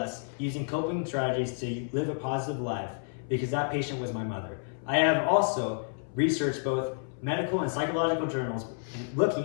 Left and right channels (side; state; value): right; silent; 58 dB below the other